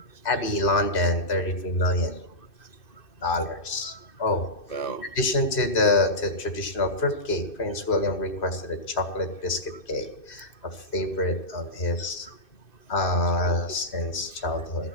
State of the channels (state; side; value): late; right; 2.6 ms